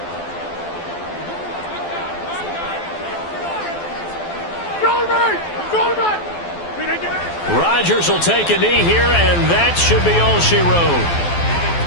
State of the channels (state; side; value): late; right; 12 ms